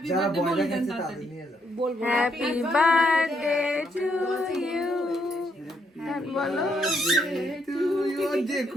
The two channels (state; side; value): normal; both; correlation 0.75